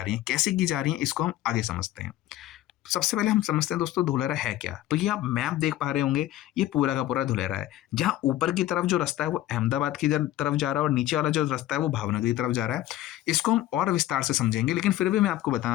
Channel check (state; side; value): quieter; right; 14.1 dB